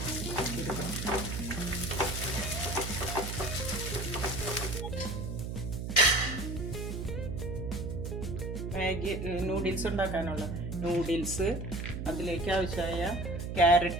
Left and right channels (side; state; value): right; noise; hum, 4 dB below the sound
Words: മാഗി നൂഡിൽസ് ഉണ്ടാക്കാനുള്ള നൂഡിൽസ്, അതിലേക്ക് ആവശ്യമായ